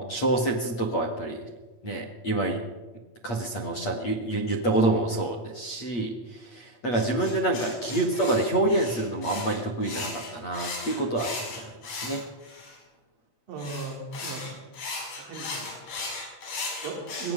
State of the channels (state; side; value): late; right; 8.9 ms